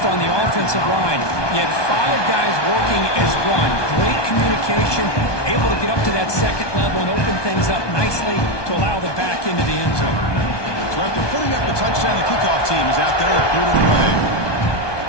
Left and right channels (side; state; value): right; late; 1.2 ms